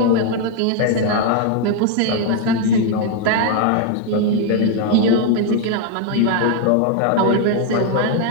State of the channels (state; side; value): different; both; correlation 0.01